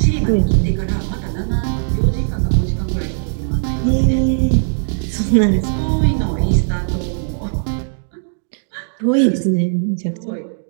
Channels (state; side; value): silent; left; digital silence